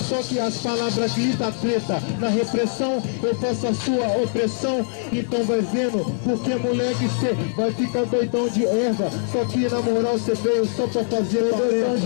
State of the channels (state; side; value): silent; right; digital silence